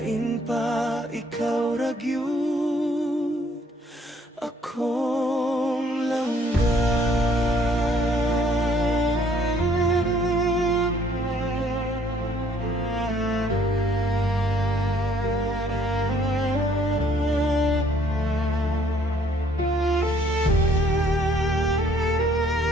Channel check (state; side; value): normal; both; correlation 0.63